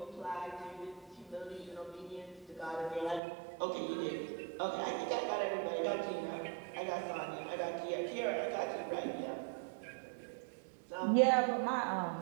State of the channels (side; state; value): left; drops out; at 3.2 s